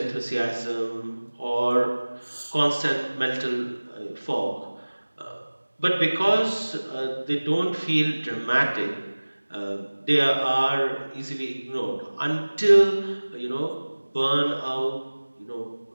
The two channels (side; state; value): both; inverted; correlation -1.00